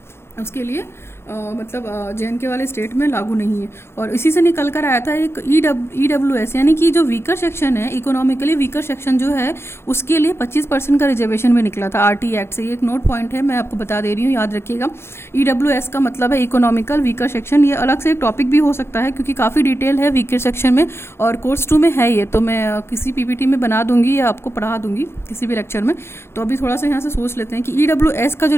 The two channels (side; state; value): right; late; 0.12 ms